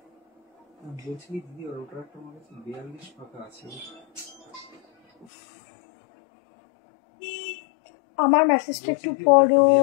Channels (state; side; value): drops out; right; at 5.2 s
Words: বলছি দিদি, ওটার একটা আমার কাছে 42 পাতা আছে। আমার মেসেজটা একটু পড়ো,